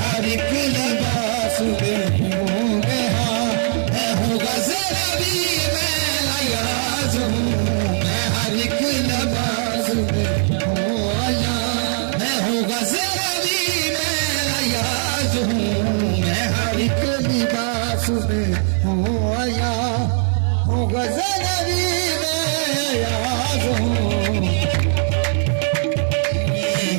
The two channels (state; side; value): silent; left; digital silence